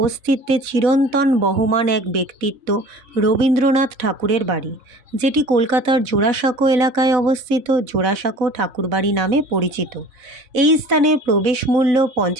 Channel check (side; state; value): left; late; 4.0 ms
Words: অস্তিত্বে চিরন্তন বহমান এক ব্যক্তিত্ব রবীন্দ্রনাথ ঠাকুরের বাড়ি, যেটি কলকাতার জোড়াসাঁকো এলাকায় অবস্থিত জোড়াসাঁকো ঠাকুরবাড়ি নামে পরিচিত। এই স্থানে প্রবেশ মূল্য